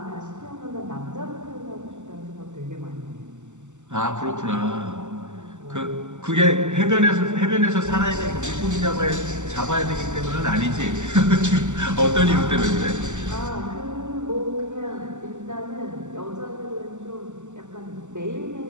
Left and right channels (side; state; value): left; late; 0.84 ms